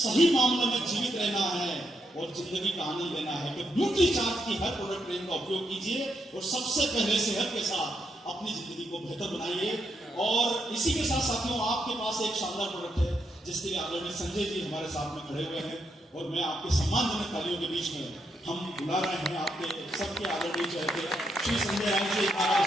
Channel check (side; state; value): both; normal; correlation 0.80